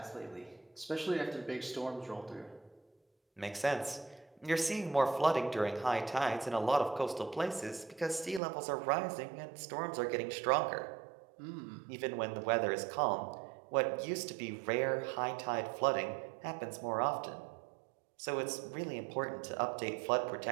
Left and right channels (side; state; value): left; drops out; at 8.4 s